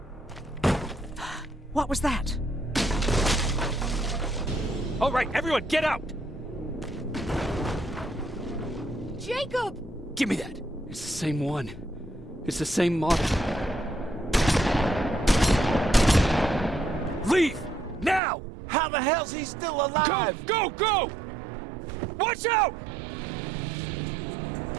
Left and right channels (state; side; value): drops out; left; at 18.2 s